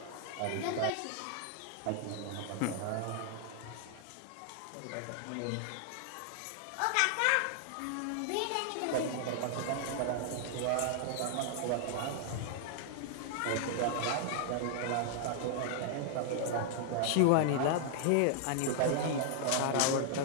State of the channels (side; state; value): both; different; correlation 0.00